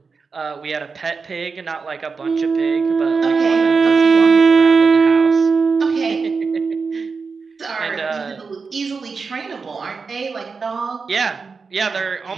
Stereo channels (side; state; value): left; quieter; 4.9 dB